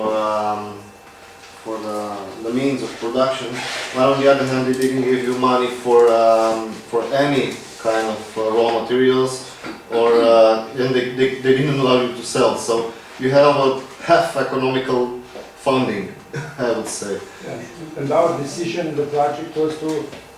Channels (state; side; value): identical; both; correlation 1.00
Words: the means of production, while on the other hand, they didn't give you money for any kind of raw materials, or and they didn't allow you to sell. So you had about half economical funding, I would say. Yeah. And our decision in the project was to